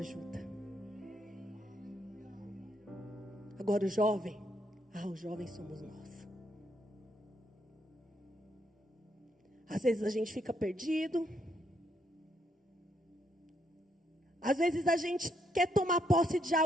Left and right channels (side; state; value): both; normal; correlation 0.75